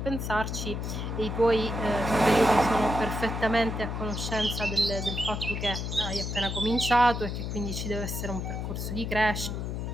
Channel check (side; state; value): left; noise; hum, 4 dB below the sound